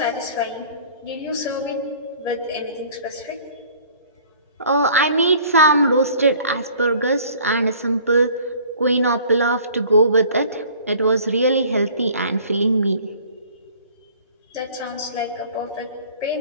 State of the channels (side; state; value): both; inverted; correlation -0.51